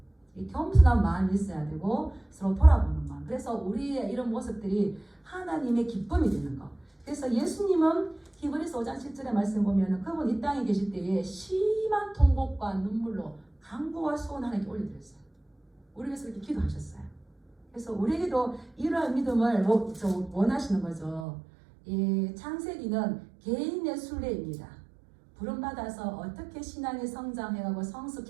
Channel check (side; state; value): left; drops out; at 21.2 s